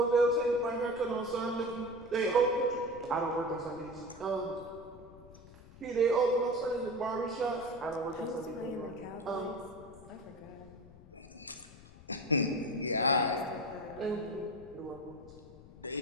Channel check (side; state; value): left; noise; rumble, 19 dB below the sound